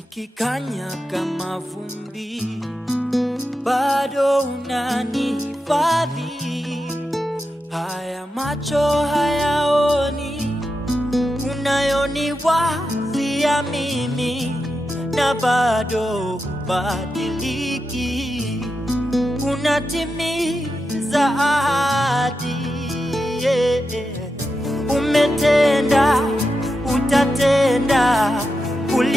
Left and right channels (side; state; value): both; normal; correlation 0.89